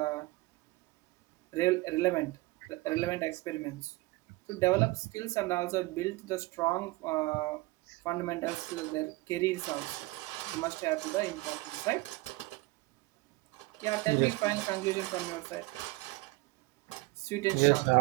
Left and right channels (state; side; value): quieter; left; 22.0 dB